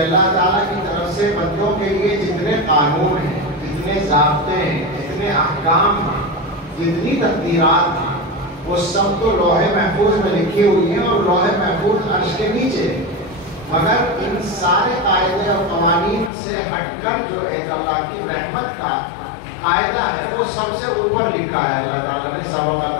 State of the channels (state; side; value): drops out; right; at 16.3 s